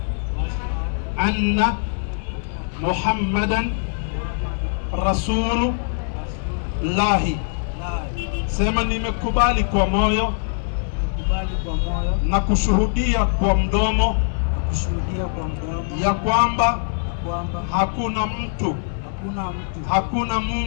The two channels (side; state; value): right; silent; digital silence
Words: anna Muhammadan Rasulullah. Sema nimekubali kwa moyo na kushuhudia kwa mdomo ya kwamba hakuna mtu, hakuna